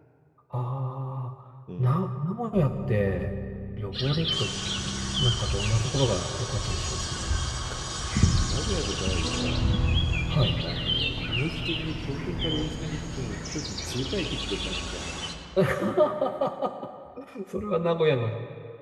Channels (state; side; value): identical; both; correlation 1.00